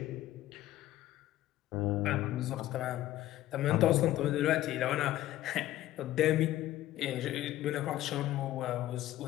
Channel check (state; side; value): quieter; right; 14.5 dB